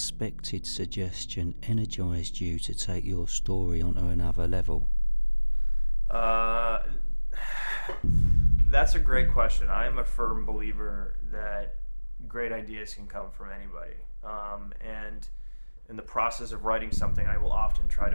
suggestion energised you to take your story onto another level? Uh, that's a great question. I am a firm believer that great ideas can come from anybody. And in the process of writing something, I will often try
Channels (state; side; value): inverted; both; correlation -1.00